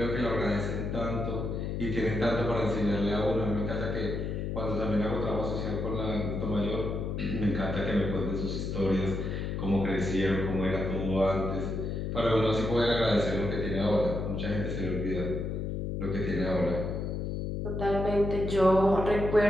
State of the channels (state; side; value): noise; left; hum, 2 dB below the sound